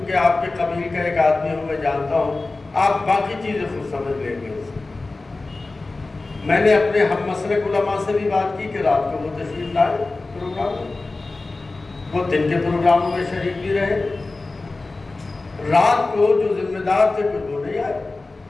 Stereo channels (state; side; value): quieter; right; 3.4 dB